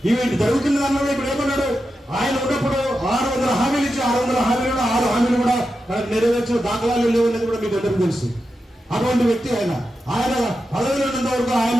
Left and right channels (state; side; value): normal; both; correlation 0.89